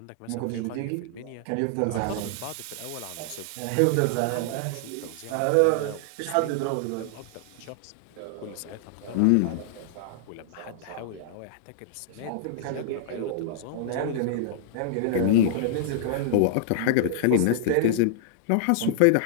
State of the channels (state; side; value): different; both; correlation -0.01